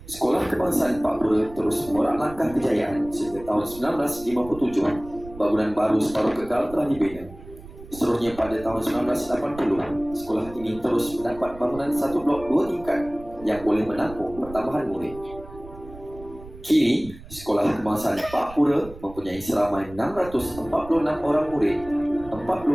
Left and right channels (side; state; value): right; noise; rumble, 17 dB below the sound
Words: Sekolah Kebangsaan Pakpura terus mengorak langkah kejayaan sehingga tahun 1957 bangunan baru separuh kekal telah dibina. Seterusnya pada tahun 1980, sekolah ini terus mendapat bangunan satu blok 2 tingkat yang boleh menampung pertambahan murid. Kini, Sekolah Kebangsaan Pakpura mempunyai seramai 646 orang murid,